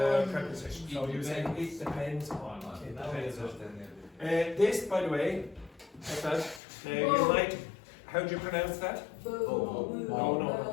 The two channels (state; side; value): drops out; right; at 6.6 s